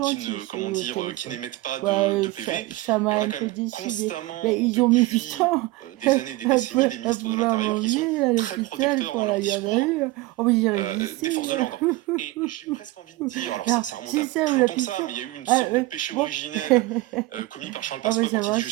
qui n'émettent pas de PV. Et on a quand même constamment, depuis des années, des décennies, des ministres de l'Intérieur qui sont très protecteurs dans leur discours des forces de l'ordre. Et j'ai presque envie de dire, alors ça remonte à plus longtemps que ça, mais il y a eu une sorte de péché originel commis par Charles Pasqua quand il dit « Je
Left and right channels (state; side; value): quieter; left; 18.9 dB